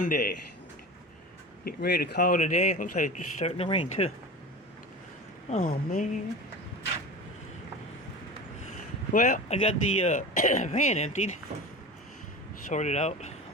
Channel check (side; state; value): both; normal; correlation 0.32